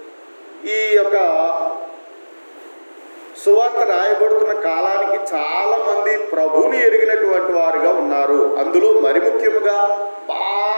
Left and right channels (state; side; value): inverted; both; correlation -1.00